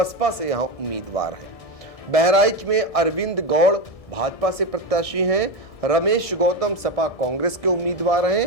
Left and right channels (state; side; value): late; right; 1.6 ms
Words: से यहाँ उम्मीदवार हैं। बहराइच में अरविंद गौड़ भाजपा से प्रत्याशी हैं। रमेश गौतम सपा कांग्रेस के उम्मीदवार